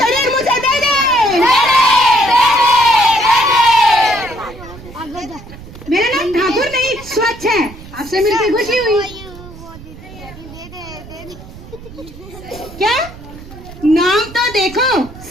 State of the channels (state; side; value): noise; right; rumble, 17 dB below the sound